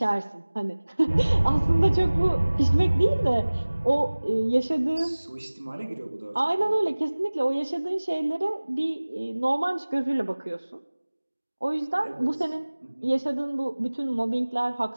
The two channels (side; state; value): both; inverted; correlation -1.00